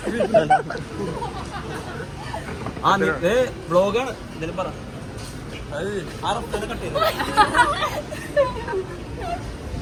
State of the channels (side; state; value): both; identical; correlation 1.00